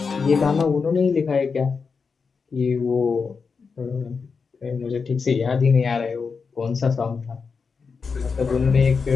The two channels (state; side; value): quieter; right; 5.2 dB